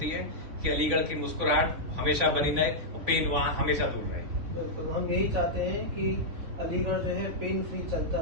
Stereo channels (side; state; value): left; late; 3.5 ms